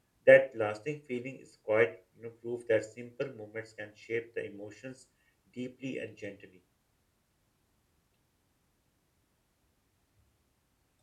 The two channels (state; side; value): identical; both; correlation 1.00